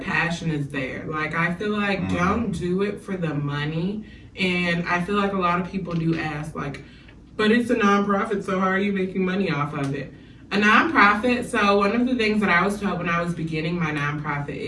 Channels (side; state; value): both; identical; correlation 1.00